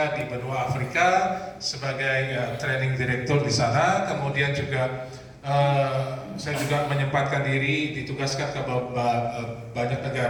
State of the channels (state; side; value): identical; both; correlation 1.00